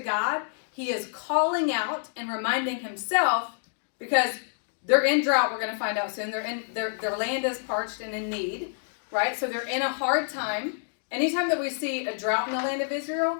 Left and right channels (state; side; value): silent; right; digital silence